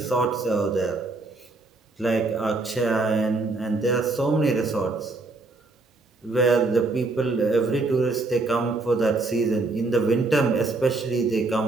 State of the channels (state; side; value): quieter; left; 3.4 dB